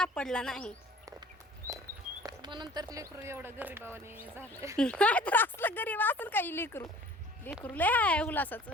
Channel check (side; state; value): both; normal; correlation 0.48